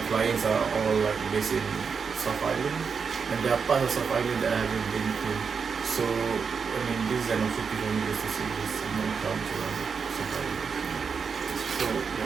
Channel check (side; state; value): left; quieter; 5.9 dB